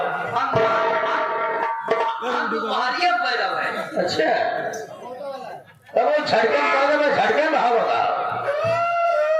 हम दुबारिया पैदा हुए। अच्छा तब वो झटकम पैदा में झटके में भाव होगा।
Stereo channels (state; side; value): identical; both; correlation 1.00